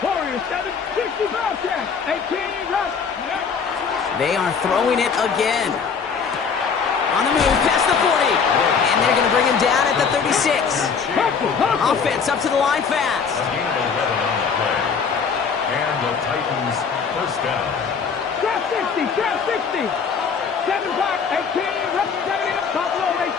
Warriors, 760 Bobcats. 18 Rush. They are throwing it again. On the move, past the 40. And they're going to bring him down at the 36. Offense up to the line fast. A gain of 11 on the play. And the Titans first down. Trap 60, trap 60. 7 back, 18, representing Buffalo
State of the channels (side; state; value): right; quieter; 6.0 dB